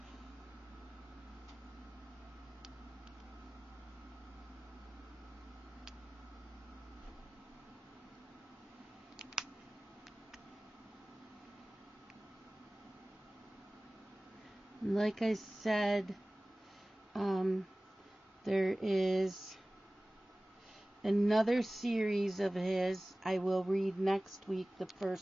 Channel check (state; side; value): normal; both; correlation 0.98